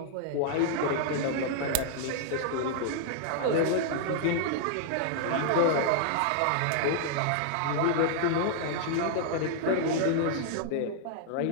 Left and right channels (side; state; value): both; different; correlation -0.01